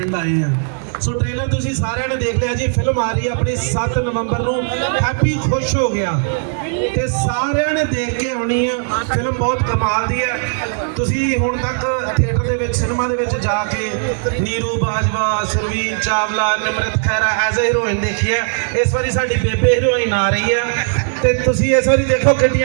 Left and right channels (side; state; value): left; silent; digital silence